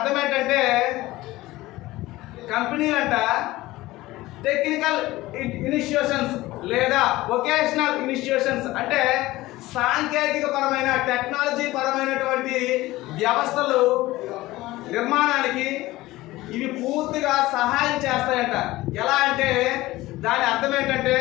ఏంటంటే, కంపెనీలంట టెక్నికల్ ఇనిషియేషన్స్ లేదా వొకేషనల్ ఇనిషియేషన్స్ అంటే సాంకేతిక పరమైన, టెక్నాలజీ పరమైనటువంటి వ్యవస్థలు నిర్మాణానికి ఇవి పూర్తిగా సహాయం చేస్తాయంట. ఎలా అంటే దాని అర్థం ఏంటంటే,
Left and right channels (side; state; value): right; quieter; 18.1 dB